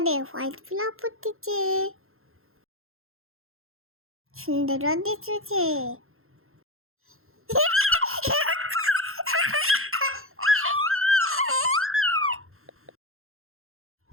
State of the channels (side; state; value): left; late; 0.61 ms